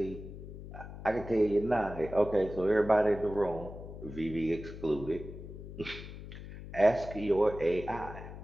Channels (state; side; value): noise; left; hum, 12 dB below the sound